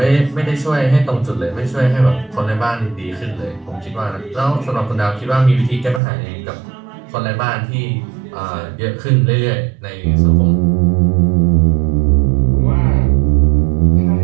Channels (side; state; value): left; drops out; at 6.0 s